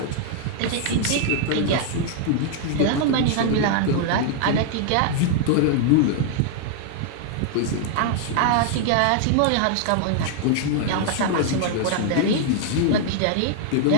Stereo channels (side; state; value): both; different; correlation 0.00